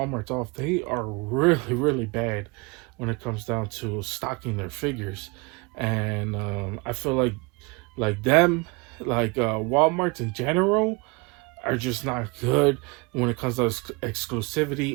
off. They are really, really bad when it comes down to stocking their figures, and I feel like them, like Walmarts in general, are just not good when it comes to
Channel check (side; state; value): left; quieter; 28.2 dB